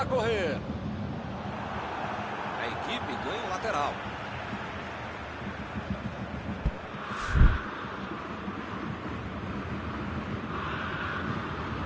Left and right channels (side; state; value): both; identical; correlation 1.00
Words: correr. A equipe ganha um lateral.